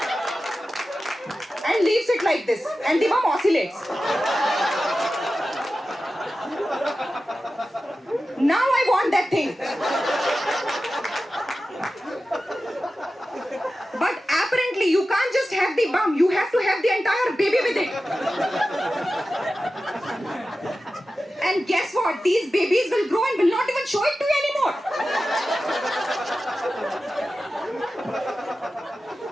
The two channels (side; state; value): both; normal; correlation 0.94